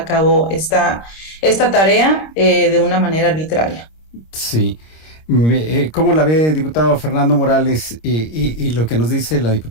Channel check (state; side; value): late; right; 26 ms